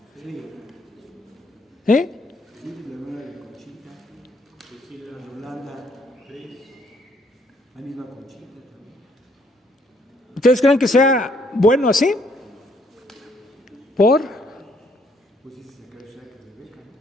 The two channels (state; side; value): normal; both; correlation 0.68